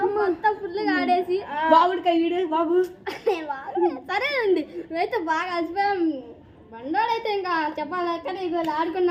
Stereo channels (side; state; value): both; identical; correlation 1.00